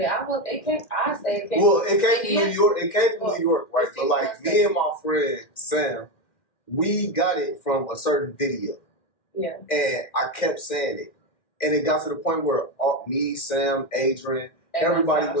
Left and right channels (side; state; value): right; late; 1.9 ms